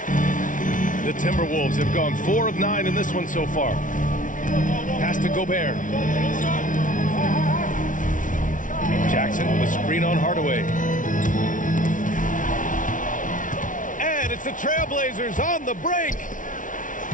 The Timberwolves have gone 4 of 9 in this one so far. Pass to Gobert. Jackson with a screen on Hardaway. And it's the Trailblazers on the break.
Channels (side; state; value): right; late; 0.38 ms